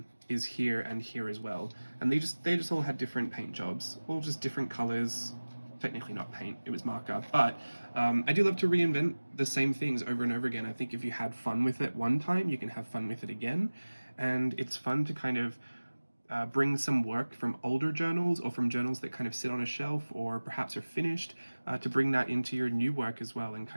is here and here as well, and they just all had different paint jobs, all just different colors. Technically not paint, it was marker, but I do love to reinvent the same things over and over again. I think if you had fun with it one time, you can have fun with it again, and it's fun to kind of bring some work from older journals or from journals that kind of sit on a shelf or perhaps are finished, to bring that into your new work as well and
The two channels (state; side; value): inverted; both; correlation -1.00